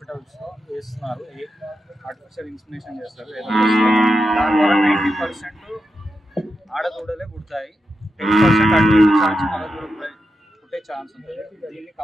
వేస్తున్నారు. ఆర్టిఫిషియల్ ఇన్స్మినేషన్ చేస్తారు. దాని ద్వారా 90% ఆడదూడలే పుడతాయి. 10% అటు ఇటు ఛాన్స్ మగదూడ పుట్టే ఛాన్స్ ఉంటుంది. దీన్ని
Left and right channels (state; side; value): normal; both; correlation 0.88